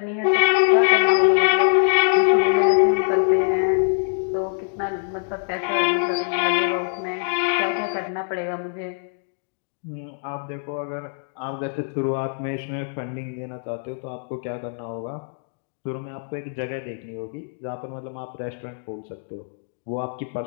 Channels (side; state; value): right; silent; 63 dB below the other